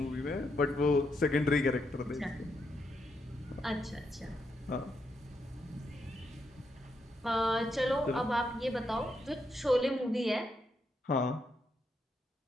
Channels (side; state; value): both; normal; correlation 0.80